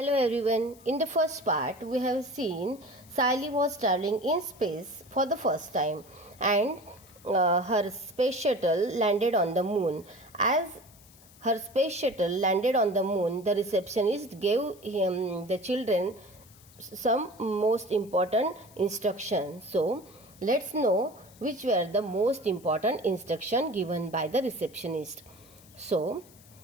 everyone. In the first part, we have seen Sally was traveling in space for the first time and her space shuttle landed on the moon. As her space shuttle landed on the moon, the receptionist gave the children some most important instructions. So, let's know which were the most important instruction given by the receptionist. So,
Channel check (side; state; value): left; noise; hiss, 25 dB below the sound